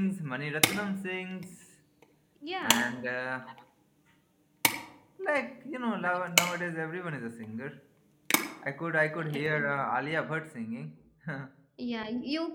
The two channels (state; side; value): identical; both; correlation 1.00